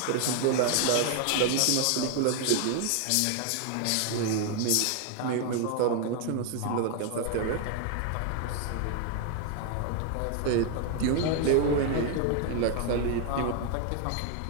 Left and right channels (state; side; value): different; both; correlation 0.00